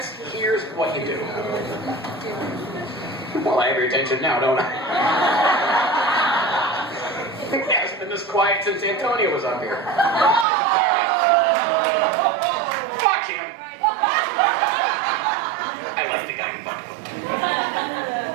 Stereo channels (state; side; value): drops out; left; at 10.5 s